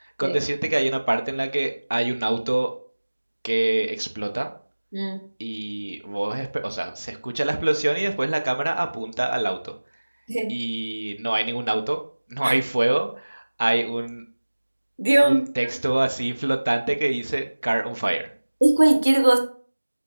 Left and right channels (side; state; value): both; inverted; correlation -1.00